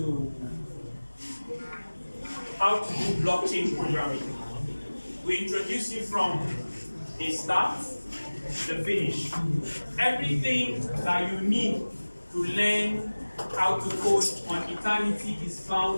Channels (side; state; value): both; inverted; correlation -1.00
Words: blockchain programming. We introduce you from the start to the finish. Everything that you need to learn how to code on Eternity is